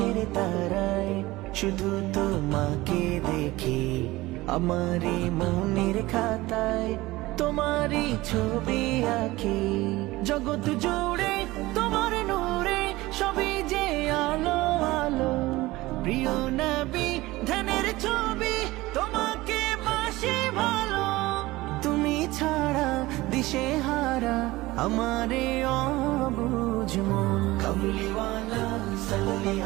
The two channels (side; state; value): left; quieter; 19.3 dB